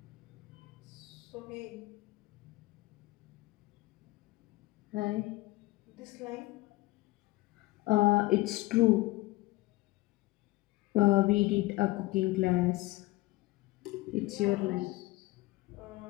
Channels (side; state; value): right; quieter; 20.1 dB